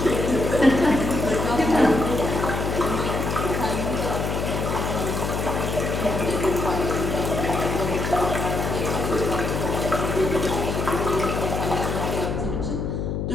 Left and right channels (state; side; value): noise; left; hum, 2 dB below the sound